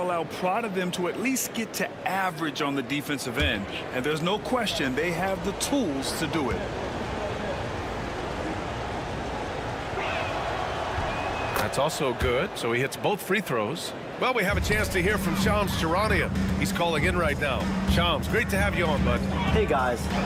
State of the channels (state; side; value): identical; both; correlation 1.00